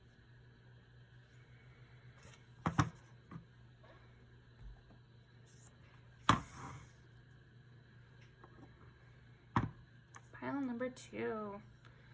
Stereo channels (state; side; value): identical; both; correlation 1.00